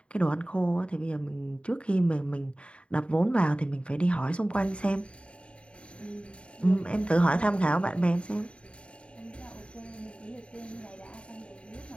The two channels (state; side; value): late; right; 0.058 ms